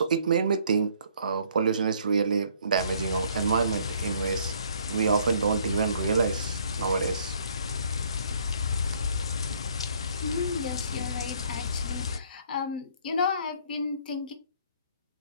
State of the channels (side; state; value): both; inverted; correlation -0.62